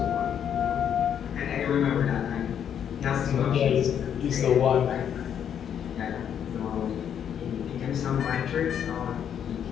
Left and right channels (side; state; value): right; quieter; 8.8 dB